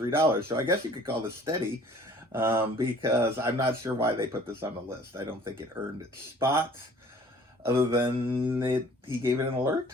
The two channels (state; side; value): normal; both; correlation 0.52